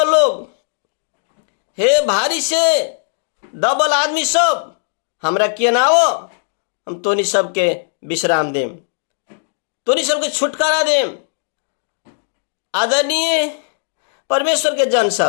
लोग, हे भारी से दबल आदमी सब, हमरा किए ना हो, हम तोनी सबके विश्राम देम, तोनी सबके छुटकारा देम। आदरणीय परमेश्वर के जन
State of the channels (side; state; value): right; silent; digital silence